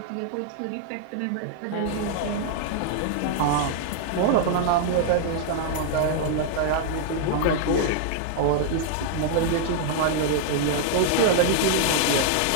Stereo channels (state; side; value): different; both; correlation -0.01